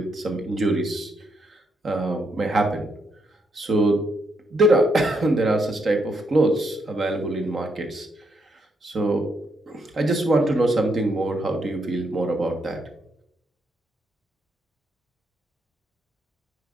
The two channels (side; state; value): both; normal; correlation 0.77